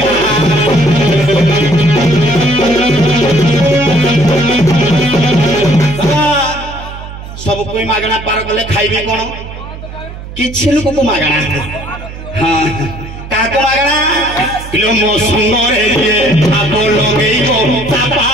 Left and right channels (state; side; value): noise; right; hum, 12 dB below the sound